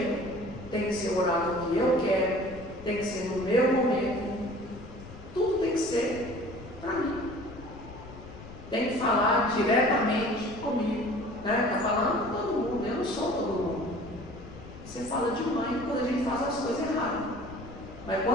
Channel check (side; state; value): left; noise; rumble, 15 dB below the sound